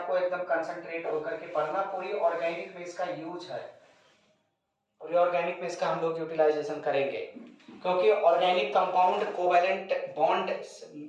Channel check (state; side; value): identical; both; correlation 1.00